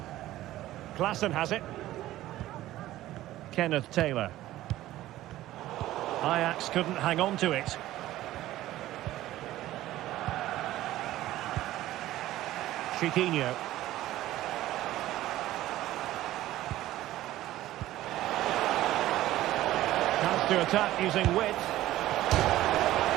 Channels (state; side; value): quieter; left; 15.0 dB